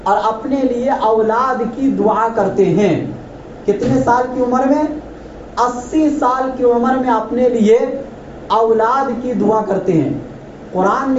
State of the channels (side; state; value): both; identical; correlation 1.00